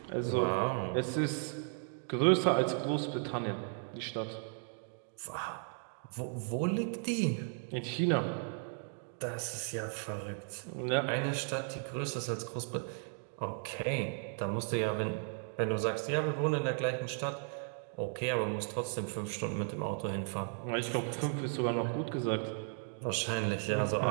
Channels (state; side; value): silent; left; 54 dB below the other